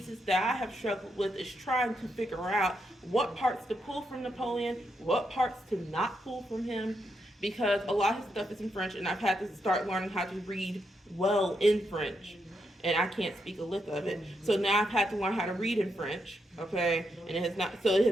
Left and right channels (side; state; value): both; normal; correlation 0.81